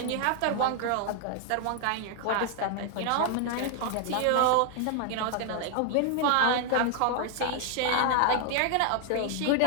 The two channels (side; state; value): both; different; correlation 0.00